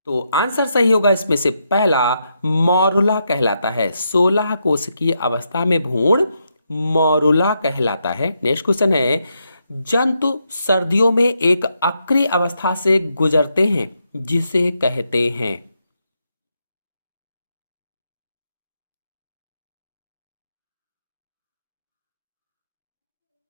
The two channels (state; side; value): inverted; both; correlation -0.81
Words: तो आंसर सही होगा इसमें से पहला, मॉरुला कहलाता है। 16 कोष की अवस्था में भ्रूण मॉरुला कहलाता है। नेक्स्ट क्वेश्चन है, जंतु सर्दियों में एक अक्रिय अवस्था से गुजरते हैं जिसे कहते हैं?